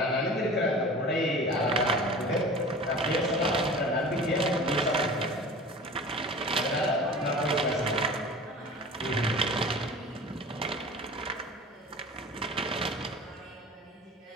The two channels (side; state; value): both; normal; correlation 0.38